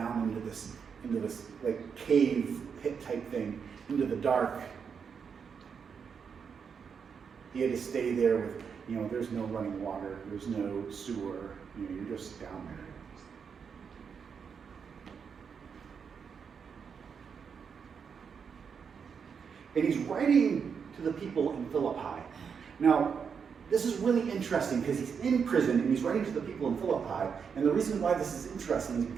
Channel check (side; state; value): left; quieter; 6.5 dB